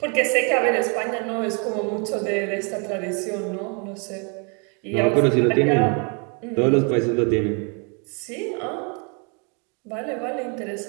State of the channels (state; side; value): quieter; left; 35.8 dB